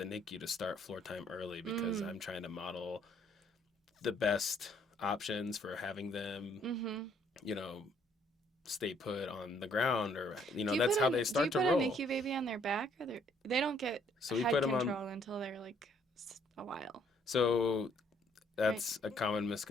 NICU to start floor time early because Mm. I'm trying to model the best options for having them, Mm-hmm. you know, stay put on the ground, or Do you that's put how they do you start to put a roll. NICU baby on their back, or they don't get So we head put them on. control until they're like a while, So right? that's a common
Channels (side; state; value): both; normal; correlation 0.66